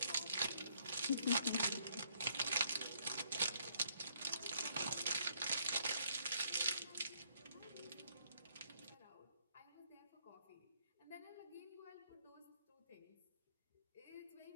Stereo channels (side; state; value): both; inverted; correlation -0.69